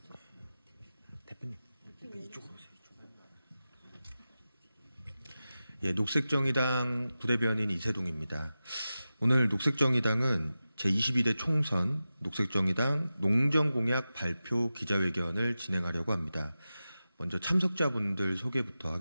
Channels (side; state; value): both; inverted; correlation -0.94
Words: 대표님 이쪽으로 오세요. 예, 녹색정의당 부대변인 이세동입니다. 오늘 녹색정의당은 제22대 총선 녹색정의당 농정공약 발표 기자회견을 진행하려고 합니다. 먼저 참석자분들 소개부터